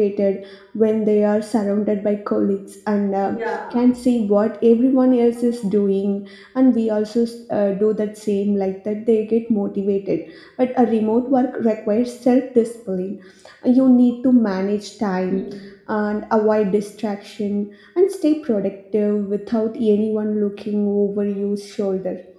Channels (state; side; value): identical; both; correlation 1.00